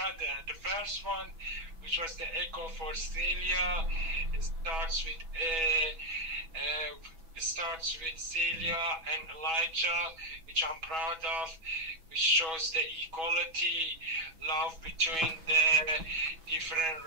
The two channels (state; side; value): late; left; 6.2 ms